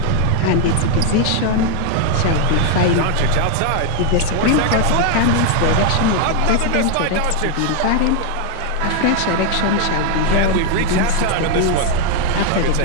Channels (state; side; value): different; both; correlation 0.01